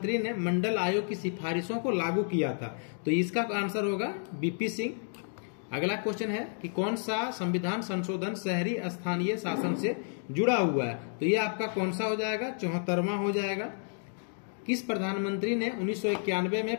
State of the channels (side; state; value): right; silent; 57 dB below the other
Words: ने मंडल आयोग की सिफारिशों को लागू किया था? तो इसका आंसर होगा बीपी सिंह। अगला क्वेश्चन है कि कौन सा संविधान संशोधन शहरी स्थानीय शासन से जुड़ा हुआ है? तो ये आपका कौन सा हो जाएगा? 74वां हो जाएगा। किस प्रधानमंत्री ने 1991 में